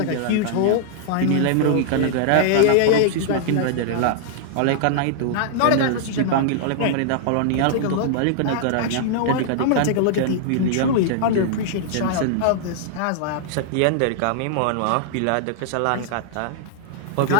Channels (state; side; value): different; both; correlation -0.01